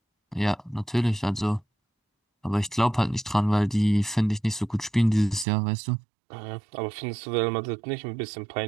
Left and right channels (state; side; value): drops out; left; at 5.5 s